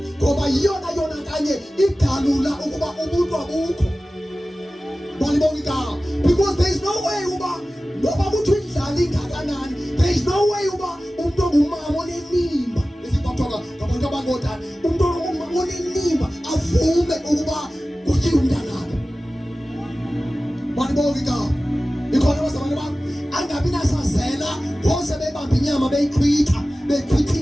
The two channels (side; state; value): both; normal; correlation 0.96